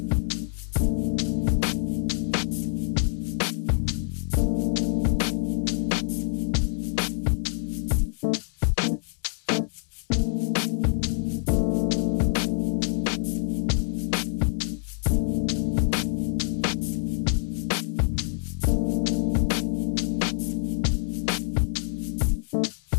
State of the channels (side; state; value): right; silent; digital silence